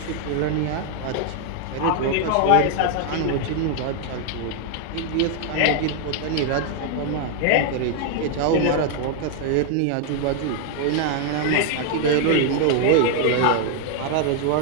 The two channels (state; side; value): different; both; correlation 0.00